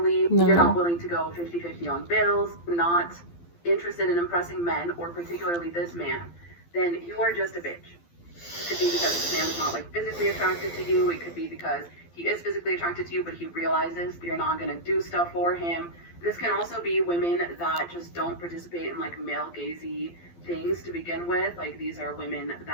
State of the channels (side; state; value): right; late; 12 ms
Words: you're not willing to go 50-50 on bills, not interested in impressing men, or particularly this man, then you are just a bitch. It could be because this man is not like physically attracted to you. It could be because he is physically attracted to you, but he realizes you're not going to do stuff for him. This can also be women that just don't participate in like male gazy things to begin with. Like these are women